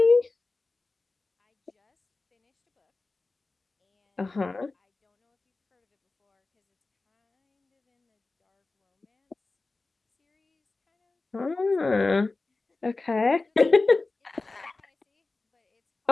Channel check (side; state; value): right; quieter; 3.5 dB